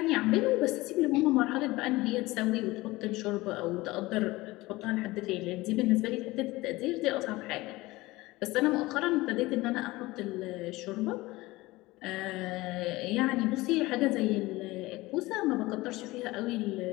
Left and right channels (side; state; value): right; quieter; 20.1 dB